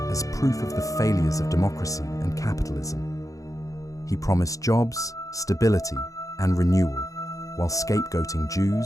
as proof of the failures of democracy and capitalism. He promised jobs, stability, and renewal, while scapegoating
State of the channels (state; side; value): late; right; 0.16 ms